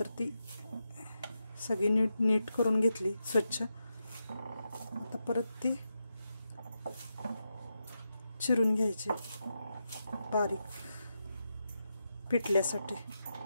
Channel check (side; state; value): both; inverted; correlation -0.87